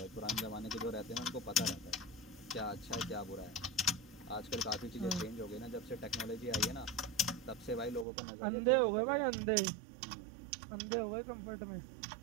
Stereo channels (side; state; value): left; drops out; at 8.1 s